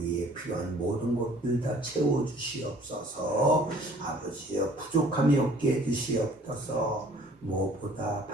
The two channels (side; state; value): both; normal; correlation 0.54